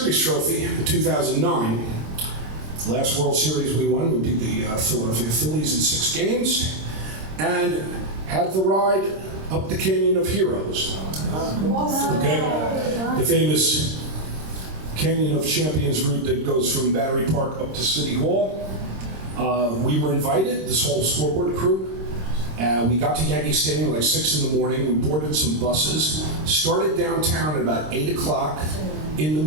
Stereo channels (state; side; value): late; left; 26 ms